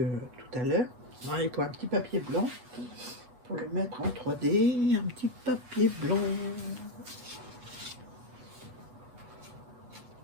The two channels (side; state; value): left; late; 8.2 ms